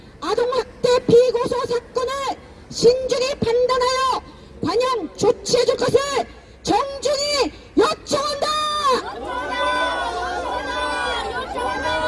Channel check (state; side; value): identical; both; correlation 1.00